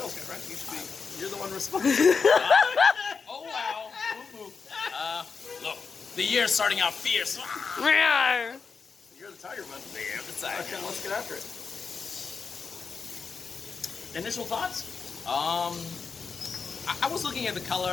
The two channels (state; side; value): quieter; right; 5.2 dB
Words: guy, right? You're the one responsible. Oh wow. Look, the year's starting out fierce. You're tiger, bud. Beer of the tiger. Okay, let's get after it. Initial thoughts? I was looking at the